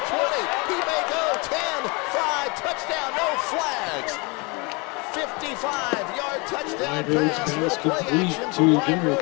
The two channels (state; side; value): quieter; right; 28.9 dB